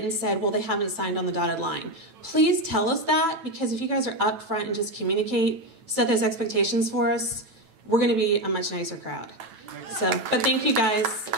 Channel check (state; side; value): late; left; 9.0 ms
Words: and said, well, they haven't signed on the dotted line. Please tell us that, because if you guys are upfront and just communicate, set those expectations for us, we're going to be a much nicer crowd. So, but thank you guys.